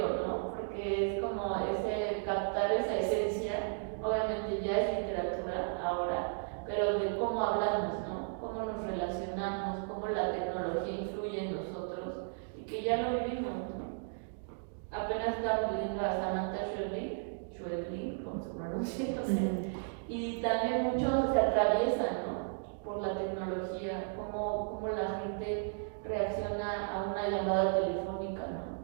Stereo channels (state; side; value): silent; left; digital silence